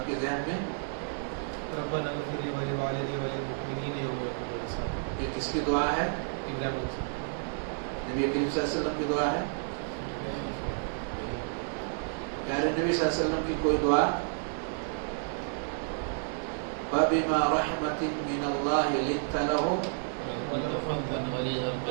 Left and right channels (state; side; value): silent; left; digital silence